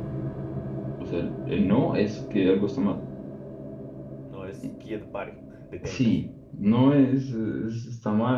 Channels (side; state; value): both; identical; correlation 1.00